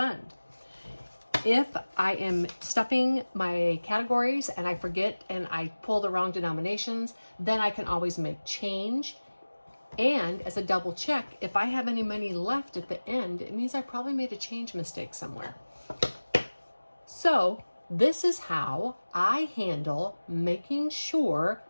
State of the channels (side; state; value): both; inverted; correlation -1.00